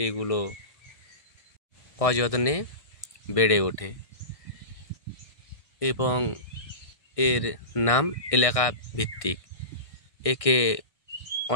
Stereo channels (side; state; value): right; late; 1.6 ms